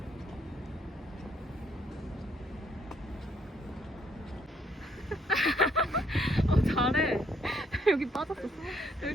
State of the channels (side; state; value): both; normal; correlation 0.69